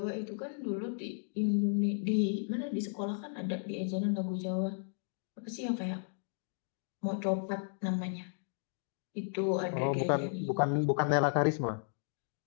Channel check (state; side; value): silent; right; digital silence